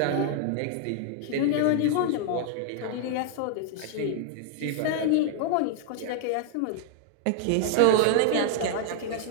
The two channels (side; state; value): both; different; correlation 0.00